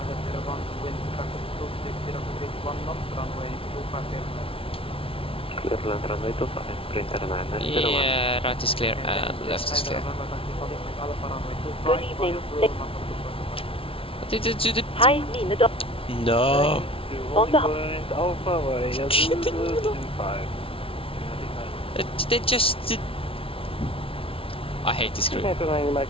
Wind traffic 260 degrees 1 knot, runway 25 Clear land runway 25, printer and 01. Yeah, right is clear and left is clear. Good evening. Did it do the... Hei, mine da... No! On the... They just did... I hate this group.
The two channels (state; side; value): late; right; 0.26 ms